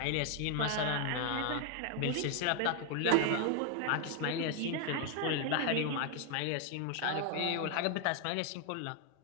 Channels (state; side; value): different; both; correlation 0.01